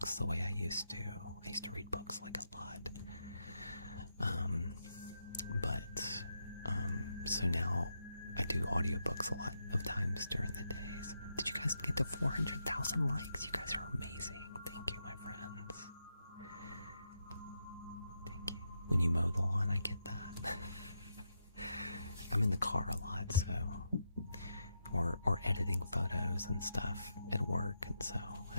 the way I used to. I used to read books like a lot. So now I do audiobooks a lot of times during the days. Did you guys get to 400,000 likes? You guys are amazing. Thank you, my friends. Thank you. When you mow the lawn, I get that. I'm in the car a lot, so or editing photos and stuff at work, and so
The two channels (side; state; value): both; inverted; correlation -0.83